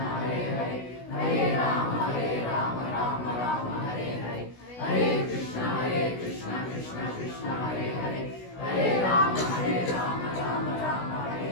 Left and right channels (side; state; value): right; late; 16 ms